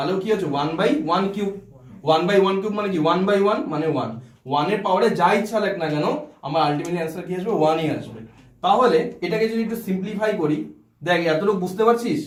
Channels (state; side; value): identical; both; correlation 1.00